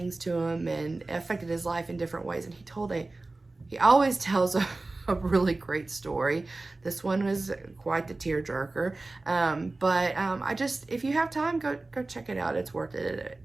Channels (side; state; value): left; quieter; 3.2 dB